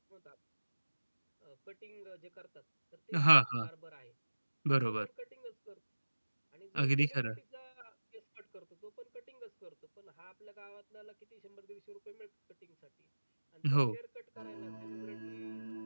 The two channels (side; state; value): both; inverted; correlation -1.00